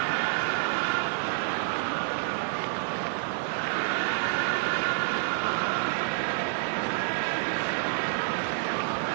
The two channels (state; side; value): silent; left; digital silence